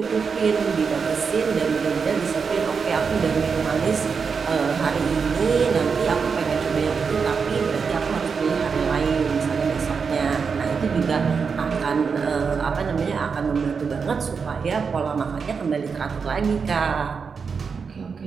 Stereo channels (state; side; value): quieter; left; 5.6 dB